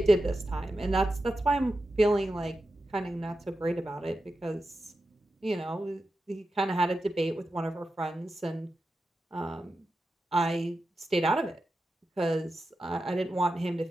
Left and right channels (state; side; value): normal; both; correlation 0.90